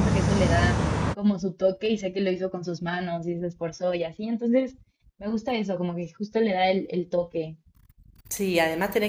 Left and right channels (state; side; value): identical; both; correlation 1.00